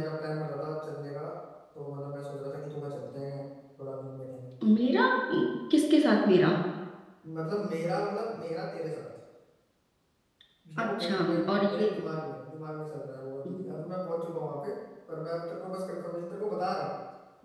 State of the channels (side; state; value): both; identical; correlation 1.00